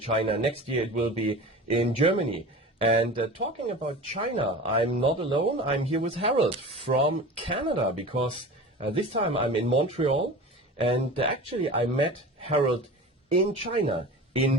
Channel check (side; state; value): both; normal; correlation 0.35